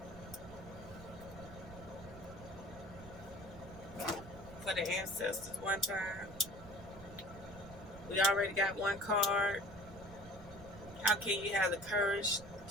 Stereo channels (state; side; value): noise; right; rumble, 15 dB below the sound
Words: for the ancestors one time. We already got one card. How can you have the courage